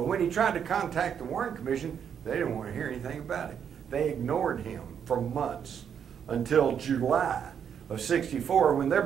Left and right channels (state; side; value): quieter; left; 8.0 dB